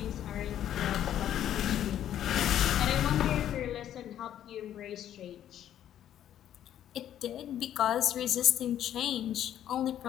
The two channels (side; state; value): right; quieter; 11.0 dB